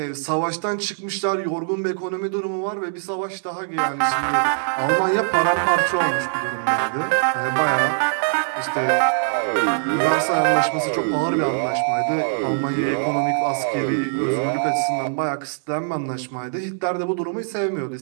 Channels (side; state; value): left; silent; digital silence